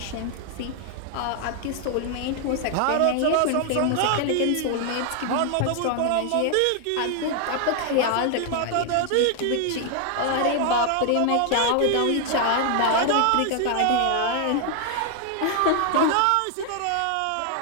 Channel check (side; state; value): both; different; correlation 0.00